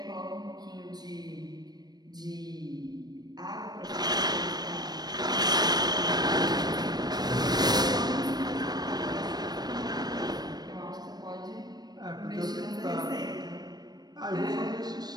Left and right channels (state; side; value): late; left; 0.19 ms